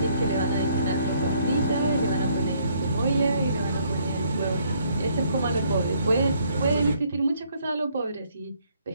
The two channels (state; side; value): inverted; both; correlation -0.66